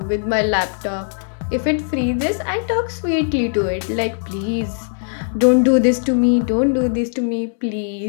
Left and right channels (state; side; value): silent; right; digital silence